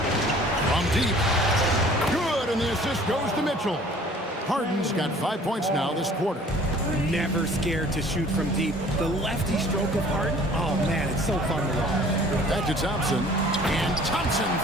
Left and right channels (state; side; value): normal; both; correlation 0.51